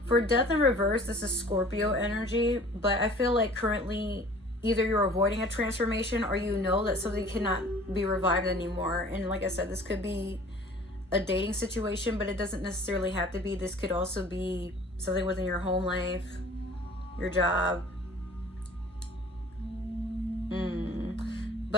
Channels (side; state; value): both; normal; correlation 0.48